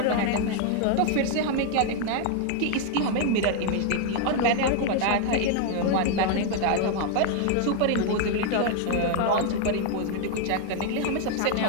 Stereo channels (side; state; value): both; different; correlation 0.00